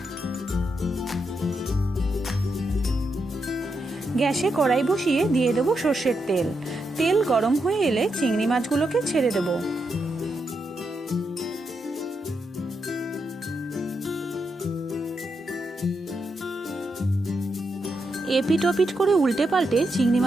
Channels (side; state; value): both; normal; correlation 0.83